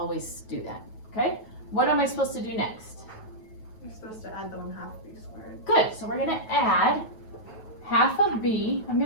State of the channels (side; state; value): right; late; 9.2 ms